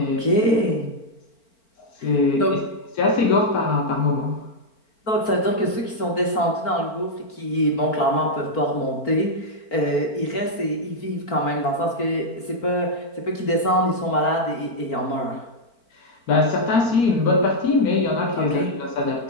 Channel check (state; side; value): late; right; 4.4 ms